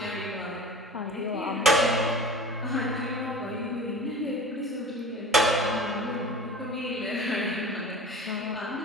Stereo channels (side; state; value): both; normal; correlation 0.38